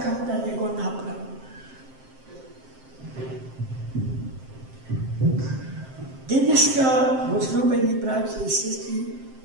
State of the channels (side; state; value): left; late; 7.6 ms